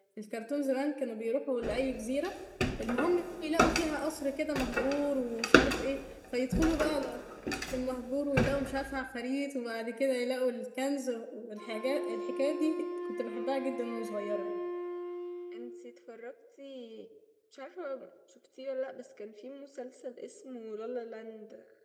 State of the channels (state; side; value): identical; both; correlation 1.00